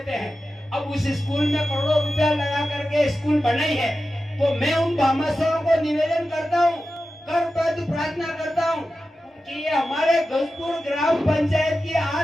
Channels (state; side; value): normal; both; correlation 0.93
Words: हैं। अब उस स्कूल में करोड़ों रुपया लगा करके स्कूल बनाई है। तो मैं उन भामाशाहों को निवेदन करता हूँ, करबद्ध प्रार्थना करता हूँ कि ये हमारे गजपुर ग्राम पंचायत की